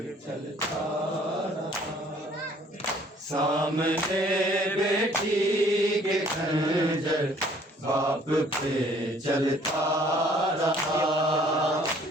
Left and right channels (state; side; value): normal; both; correlation 0.58